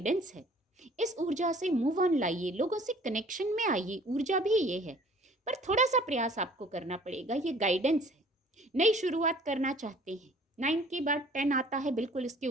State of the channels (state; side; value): normal; both; correlation 0.53